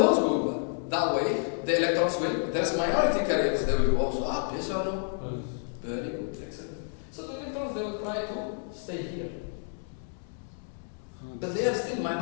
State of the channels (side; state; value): right; silent; 58 dB below the other